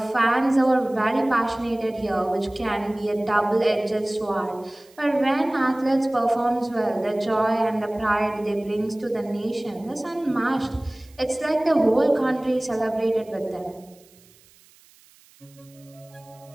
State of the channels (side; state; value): right; noise; hiss, 28 dB below the sound